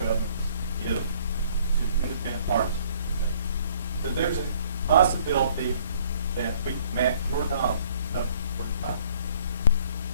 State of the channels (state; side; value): inverted; both; correlation -0.59